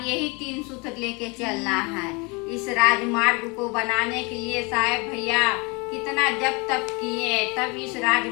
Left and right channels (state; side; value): quieter; right; 29.0 dB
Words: यही 3 सूत्र लेके चलना है। इस राजमार्ग को बनाने के लिए साहब भैया कितना जप तप किए तब इस